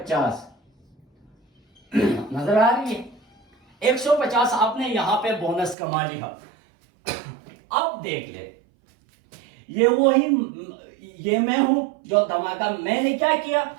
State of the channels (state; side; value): drops out; left; at 5.8 s